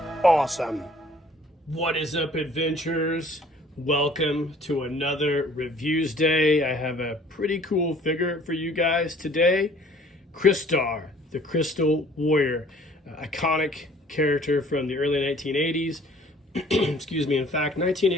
Awesome. What is up, adventurers? Welcome to another Reviews Day. I have a pretty cool figure for you guys today. Crystar, the Crystal Warrior. Iconic character from the early 1980s. Excuse me. In fact,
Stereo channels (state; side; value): normal; both; correlation 0.54